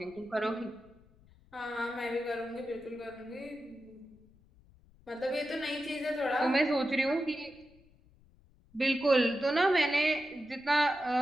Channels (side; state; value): left; noise; rumble, 28 dB below the sound